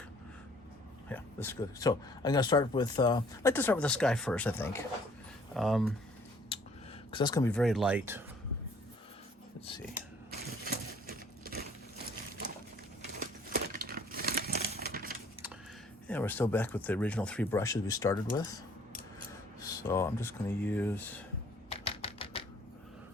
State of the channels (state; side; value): normal; both; correlation 0.58